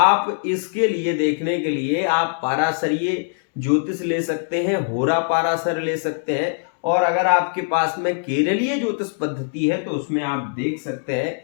इसके लिए देखने के लिए आप पाराशरीय ज्योतिष ले सकते हैं, होरा पाराशर ले सकते हैं, और अगर आपके पास में केरलीय ज्योतिष पद्धति है तो उसमें आप देख सकते हैं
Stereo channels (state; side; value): silent; right; digital silence